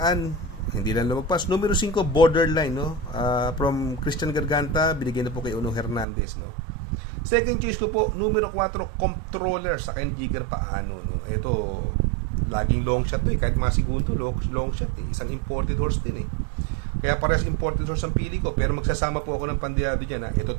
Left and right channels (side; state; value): left; drops out; at 6.1 s